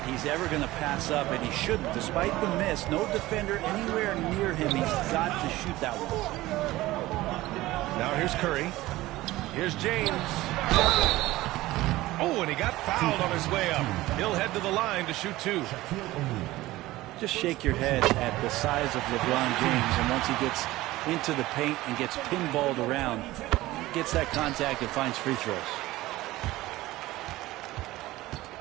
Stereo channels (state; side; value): quieter; left; 17.7 dB